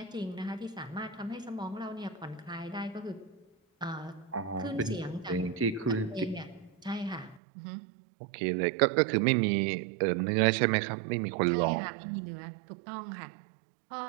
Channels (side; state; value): left; drops out; at 7.4 s